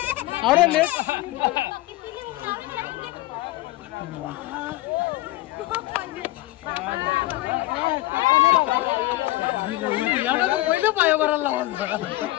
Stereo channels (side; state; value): right; quieter; 17.7 dB